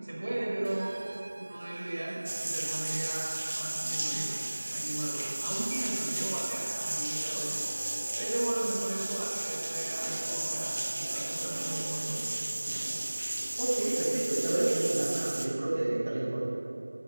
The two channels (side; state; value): both; inverted; correlation -1.00